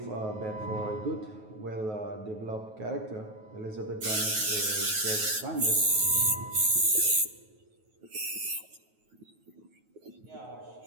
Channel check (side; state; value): left; late; 9.3 ms